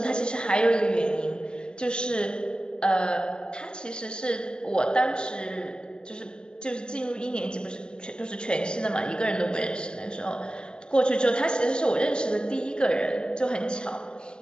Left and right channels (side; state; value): right; late; 0.051 ms